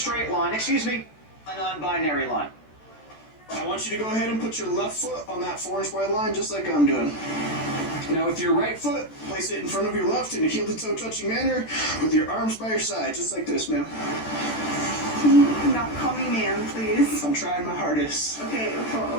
line, a non-binary line. I want you to go ahead and put your left foot on that 4-inch wide line just like I'm doing. Now with your right foot, place it in front of your left in a heel-to-toe touching manner with your arms by your side, just like this, ma'am. Can you not call me ma'am, please? I'm trying my hardest. Okay,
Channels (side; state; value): right; late; 14 ms